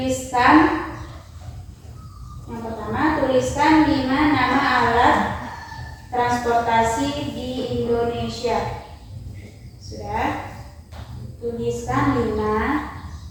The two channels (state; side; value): identical; both; correlation 1.00